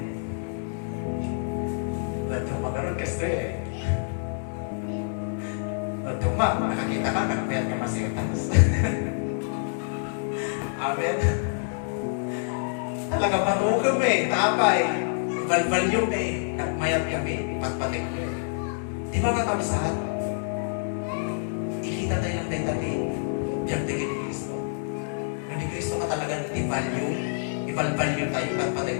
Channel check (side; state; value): right; silent; digital silence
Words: Ba't yung magarot kasi ba't yung nakakita ka, nagpayat ka masigatas. Amen. Talaga manugam tapay. Value nagmayat kami, pagpatik ko. Di ba kakapsat? Ikita tayo ng dali, biyagdagin ni Kristo. Nung ni Kristo ka talaga i-value tayo, at patay